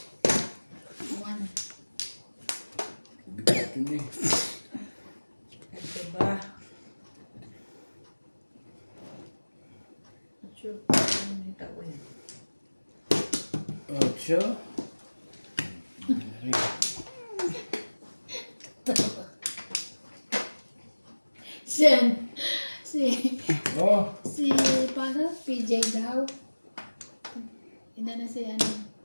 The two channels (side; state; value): both; inverted; correlation -1.00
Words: 1. Bigat yun eh. Ito ba? Sure. Ano yung tao yun? 8. Sen. Oh, Paano? PJ daw. Ina na si